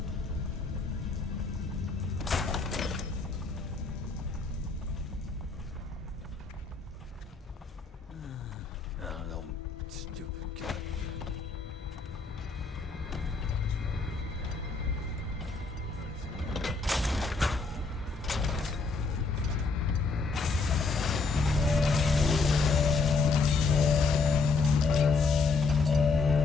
Oh, no, stupid guy.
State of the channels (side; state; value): right; quieter; 4.2 dB